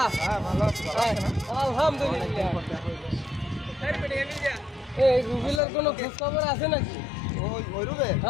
আলহামদুলিল্লাহ। এই রুবেলের কোনো খোঁজ খবর আছে নাকি? ওই রুবেল?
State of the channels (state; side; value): drops out; right; at 5.6 s